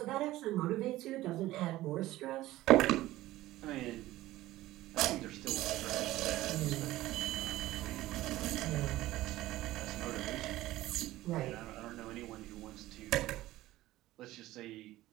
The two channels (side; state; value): left; quieter; 16.4 dB